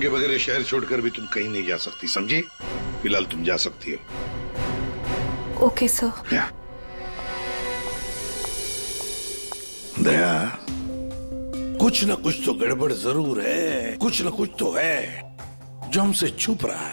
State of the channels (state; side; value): inverted; both; correlation -1.00